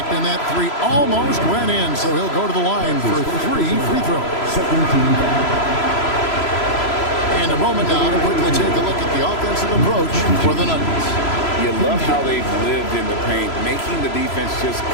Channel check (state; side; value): late; right; 3.0 ms